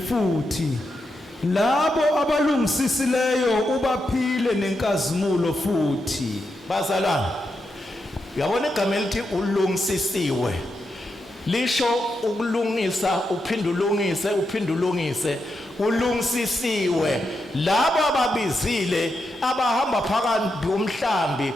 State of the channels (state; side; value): normal; both; correlation 0.85